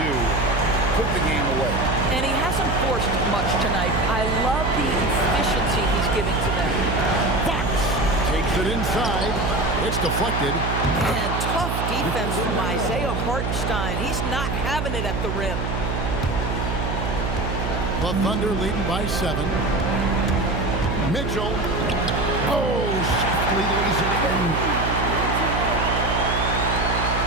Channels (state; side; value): noise; right; hum, 2 dB below the sound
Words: do. Put the game away. And he hasn't forced much tonight. I love the efficiency he's giving to them. Fox takes it inside. It's deflected. And tough defense from Isaiah Hartenstein. He's not having it at the rim. The Thunder leading by 7. Mitchell. Oh, softly lays it in.